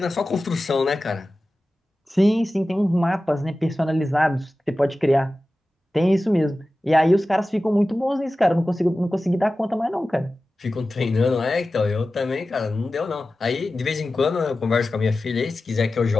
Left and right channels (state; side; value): normal; both; correlation 0.95